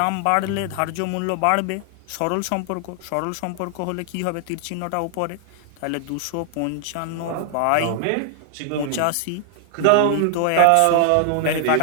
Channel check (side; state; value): both; different; correlation 0.00